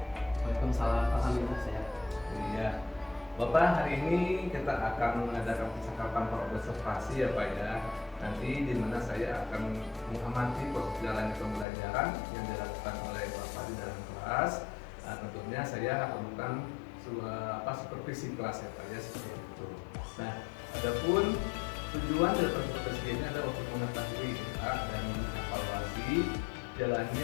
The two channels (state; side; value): drops out; right; at 11.7 s